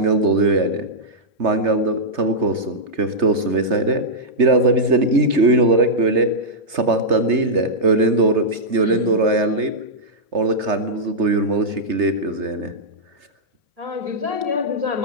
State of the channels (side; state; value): left; late; 3.3 ms